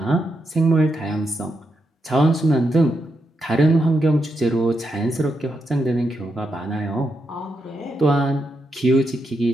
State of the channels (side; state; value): both; normal; correlation 0.83